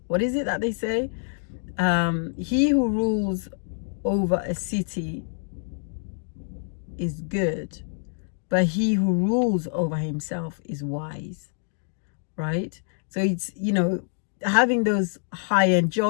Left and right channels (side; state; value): right; silent; digital silence